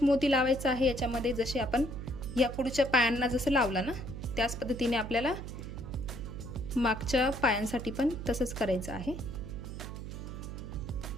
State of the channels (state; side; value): noise; right; hum, 8 dB below the sound